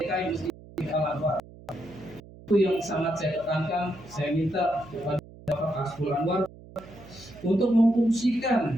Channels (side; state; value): right; noise; hum, 20 dB below the sound